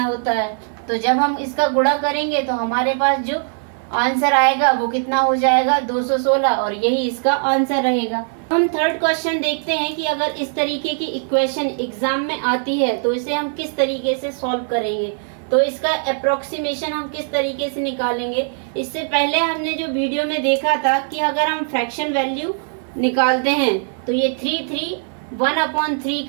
होता है। तो जब हम इसका गुणा करेंगे तो हमारे पास जो आंसर आएगा वो कितना हो जाएगा, 216, और यही इसका आंसर रहेगा। हम थर्ड क्वेश्चन देखते हैं कि अगर इस तरीके की इक्वेशन एग्जाम में आती है तो इसे हम किस तरीके से सॉल्व करेंगे, तो इसका अप्रोक्सीमेशन हम किस तरीके से निकालेंगे। इससे पहले हमने जो वीडियो में देखा था कि अगर हम फ्रैक्शन वैल्यू निकालते हैं तो ये 1/3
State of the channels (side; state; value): left; silent; 66 dB below the other